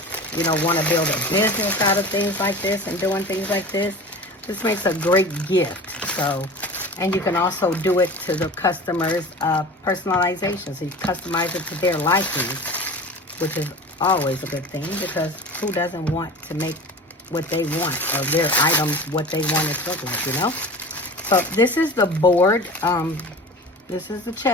you know, want to build a business out of things like this and doing things like this, this makes a great gift. So, and you can also do it to the customers' personalization. So you customize it to their liking, which is always a good thing, because who doesn't want to make what they want, or their items what they want it to look like, you know? So this is the board. This is the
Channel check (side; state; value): both; normal; correlation 0.36